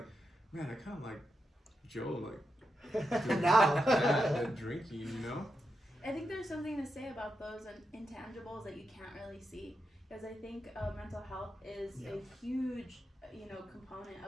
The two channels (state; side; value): normal; both; correlation 0.86